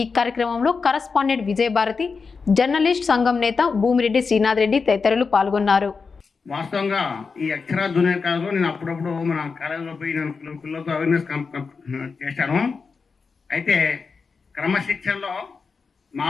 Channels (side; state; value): right; quieter; 4.9 dB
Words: కార్యక్రమంలో కరస్పాండెంట్ విజయభారతి, జర్నలిస్ట్ సంఘం నేత భూమిరెడ్డి శ్రీనాథ్ రెడ్డి తదితరులు పాల్గొన్నారు. వాస్తవంగా ఈ అక్షర జూనియర్ కాలేజ్లో నేను అప్పుడప్పుడు మన కాలేజీలో పోయి నేను పిల్లలతో అవేర్నెస్ చేశాను. అయితే క్రమశిక్షణలో